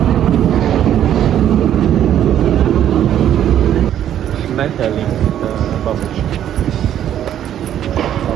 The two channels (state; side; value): quieter; left; 10.7 dB